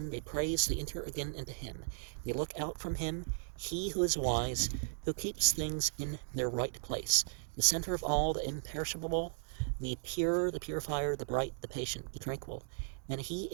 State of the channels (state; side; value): silent; left; digital silence